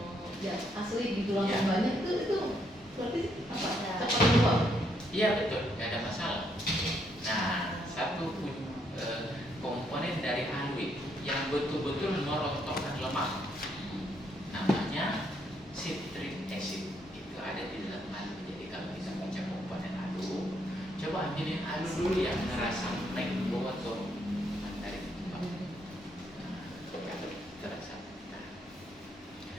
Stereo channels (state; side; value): normal; both; correlation 0.74